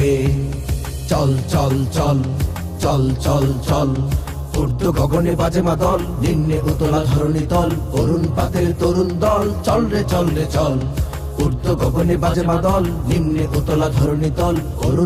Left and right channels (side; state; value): both; identical; correlation 1.00